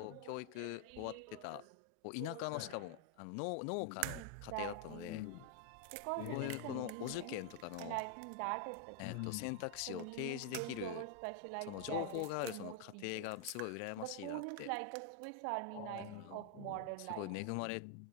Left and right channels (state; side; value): different; both; correlation 0.00